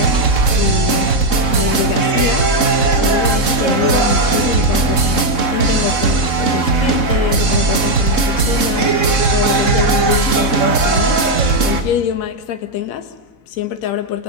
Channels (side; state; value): right; late; 4.0 ms